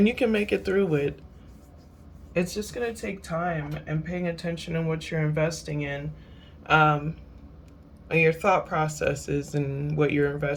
you can make it through it. It's just gonna take time and paying attention in what you're investing in, um, and your thought processes and what you're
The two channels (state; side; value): identical; both; correlation 1.00